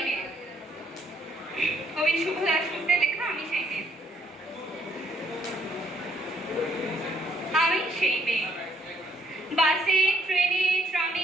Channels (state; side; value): normal; both; correlation 0.69